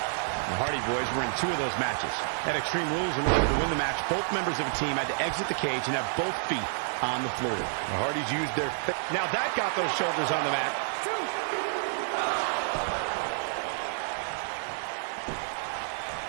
The Hardy Boys were in 2 of those matches. At Extreme Rules, in order to win the match, both members of a team had to exit the cage and have both feet on the floor. The Hardys used their... Now that got those shoulders on the mat.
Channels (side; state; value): left; silent; 58 dB below the other